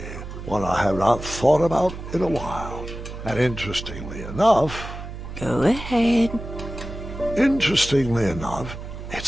one I have not thought about in a while. And interestingly enough... Go ahead. Interestingly enough,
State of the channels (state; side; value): noise; right; hum, 10 dB below the sound